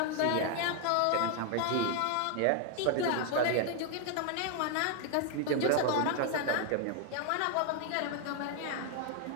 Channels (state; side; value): different; both; correlation 0.00